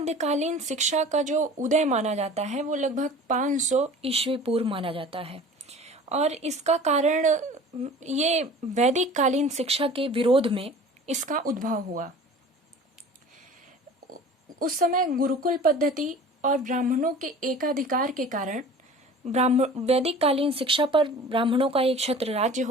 शिक्षा का जो उदय माना जाता है वो लगभग 500 ईस्वी पूर्व माना जाता है और इसका कारण ये वैदिक कालीन शिक्षा के विरोध में इसका उद्भव हुआ। उस समय गुरुकुल पद्धति और ब्राह्मणों के एकाधिकार के कारण वैदिक कालीन शिक्षा पर ब्राह्मणों का एक छत्र राज्य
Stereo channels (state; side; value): normal; both; correlation 0.42